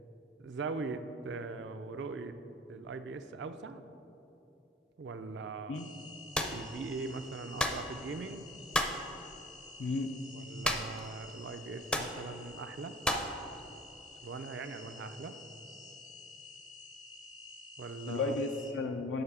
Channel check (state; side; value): normal; both; correlation 0.44